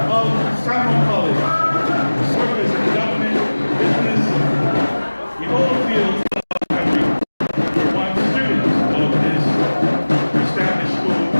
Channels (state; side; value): inverted; both; correlation -1.00